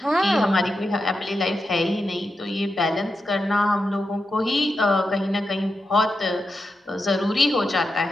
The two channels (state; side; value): normal; both; correlation 0.88